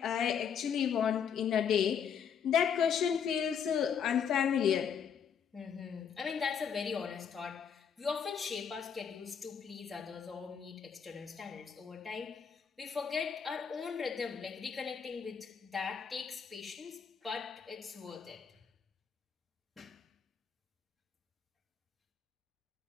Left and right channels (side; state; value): right; quieter; 7.4 dB